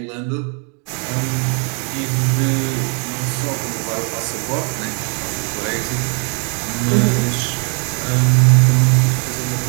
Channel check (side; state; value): left; quieter; 37.4 dB